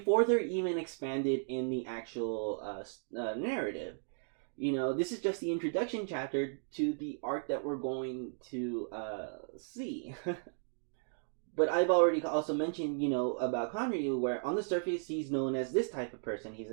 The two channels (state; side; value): silent; left; digital silence